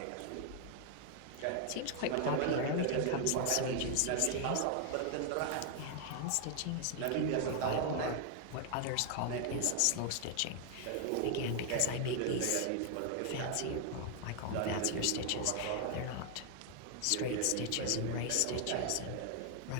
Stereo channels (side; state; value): both; different; correlation 0.00